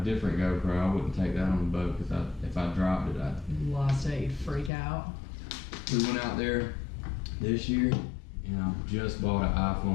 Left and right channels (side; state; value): right; drops out; at 4.7 s